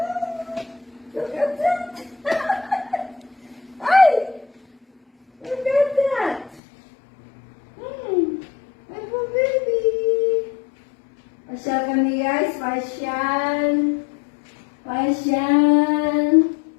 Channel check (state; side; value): drops out; right; at 6.6 s